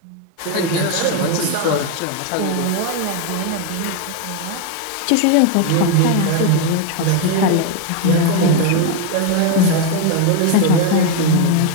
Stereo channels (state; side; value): different; both; correlation 0.01